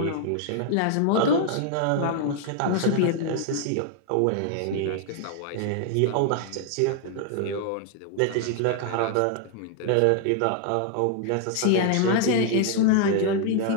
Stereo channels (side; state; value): both; different; correlation 0.00